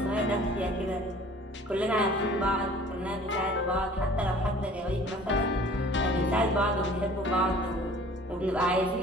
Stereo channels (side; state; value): both; normal; correlation 0.49